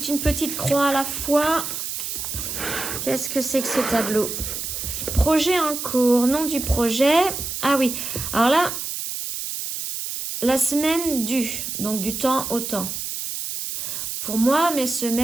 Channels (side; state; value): right; noise; hiss, 5 dB below the sound